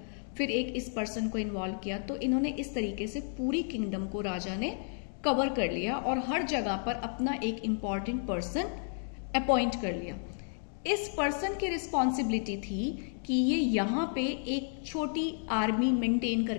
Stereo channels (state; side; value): silent; right; 56 dB below the other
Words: फिर एक इस पर्सन को इन्वॉल्व किया। तो इन्होंने इस तरीके से पूरी किंगडम को राजा ने कवर कर लिया और हर जगह पर अपना एक इंपॉर्टेंट पर्सन अपॉइंट कर लिया। इस पर्सन की रिस्पॉन्सिबिलिटी थी कि ये यहाँ पे एक छोटी आर्मी मेंटेन